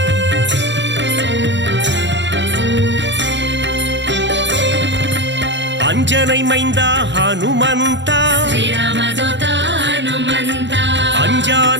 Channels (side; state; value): left; late; 0.53 ms